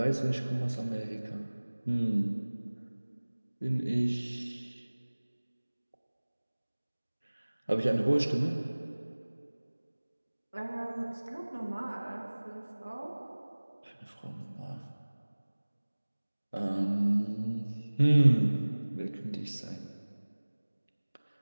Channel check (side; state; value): both; inverted; correlation -1.00